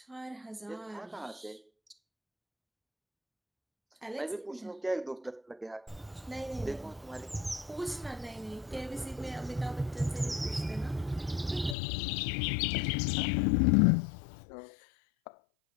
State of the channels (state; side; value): drops out; right; at 11.8 s